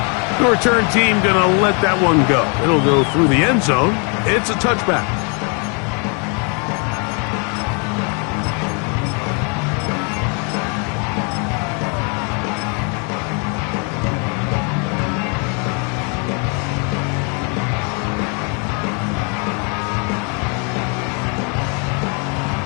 The return team going to let that one go. It'll go through the end zone. It's a touchback.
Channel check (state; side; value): quieter; right; 36.4 dB